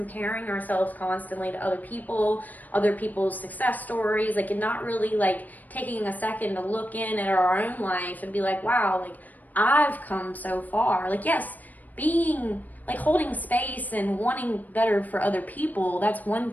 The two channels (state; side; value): late; right; 0.082 ms